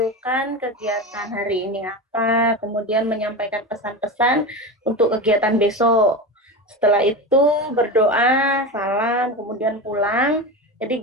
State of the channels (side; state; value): both; normal; correlation 0.23